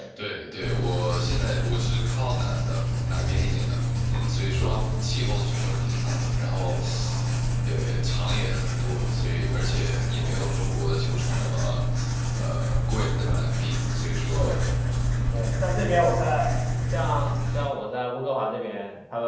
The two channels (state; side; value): identical; both; correlation 1.00